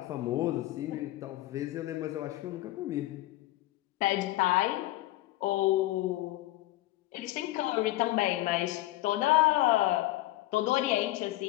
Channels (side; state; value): right; quieter; 16.8 dB